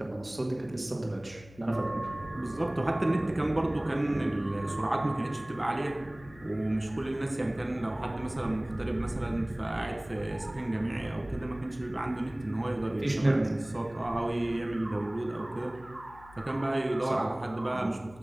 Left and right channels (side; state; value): left; noise; hum, 21 dB below the sound